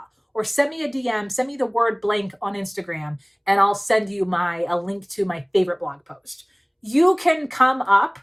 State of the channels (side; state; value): both; identical; correlation 1.00